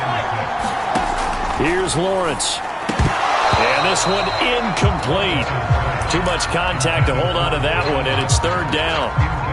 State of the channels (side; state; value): both; identical; correlation 1.00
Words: Here's Lawrence. And this one incomplete. Too much contact to hold on to that one, and it's 3rd down.